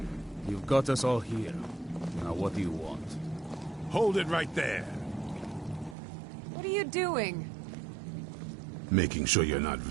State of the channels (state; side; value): drops out; left; at 6.0 s